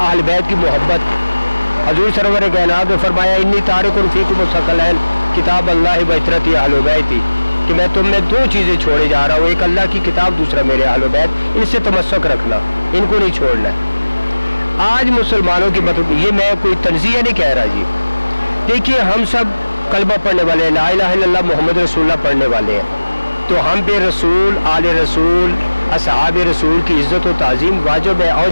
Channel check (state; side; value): inverted; both; correlation -1.00